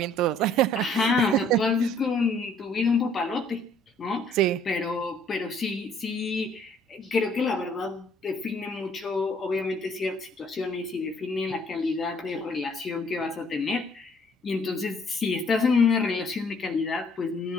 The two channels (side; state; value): both; normal; correlation 0.61